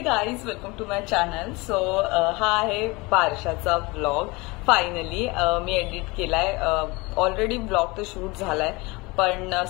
guys, welcome to my channel. So हा आहे बारशाचा ब्लॉग. फायनली मी एडिट केलाय. ऑलरेडी ब्लॉग तर शूट झालाय, पण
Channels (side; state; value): right; quieter; 24.5 dB